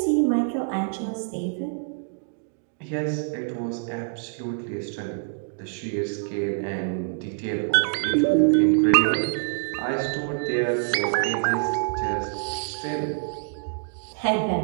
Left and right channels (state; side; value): silent; left; digital silence